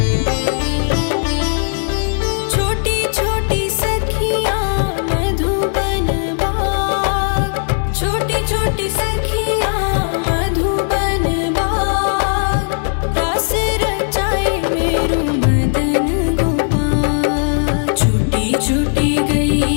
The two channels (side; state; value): right; silent; 68 dB below the other